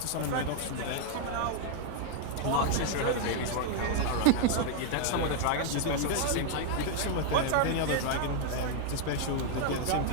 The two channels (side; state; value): both; different; correlation 0.00